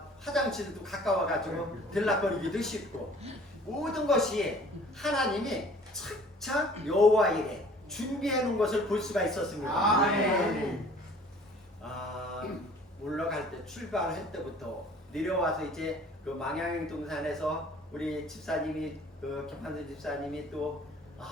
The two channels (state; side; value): normal; both; correlation 0.51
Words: 화장실도 가까워가지고 들락거리기도 쉽고, 모든 것이 하나님이 착착 여호와 일에 준비해 놓은 것을 볼 수가 있었습니다. 아멘. 올라갈 때, 출발할 때부터 내려와서 이제 그 망향 동산에서 우리 집사님이, 그 김판선 집사님이 또